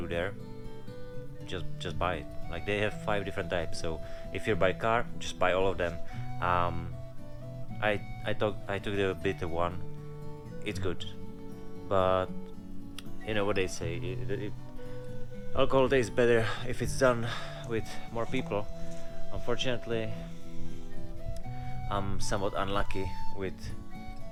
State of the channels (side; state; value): both; identical; correlation 1.00